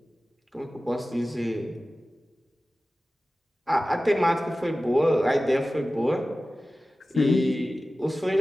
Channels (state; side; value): normal; both; correlation 0.96